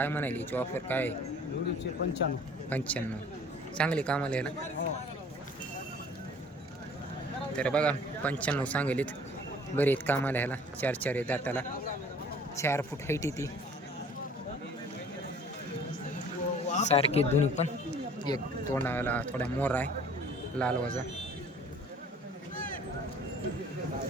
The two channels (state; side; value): normal; both; correlation 0.51